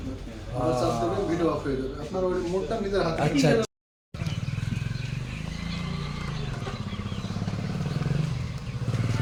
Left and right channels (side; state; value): both; identical; correlation 1.00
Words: আবার চাপ দেবেন ভিডিও অফ হয়ে যাবে আপনার ওই মোডটা নিজের হাতে আচ্ছা